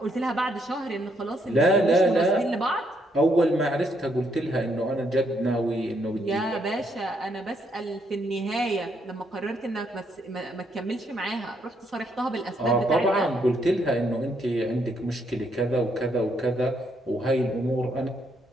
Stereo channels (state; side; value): normal; both; correlation 0.74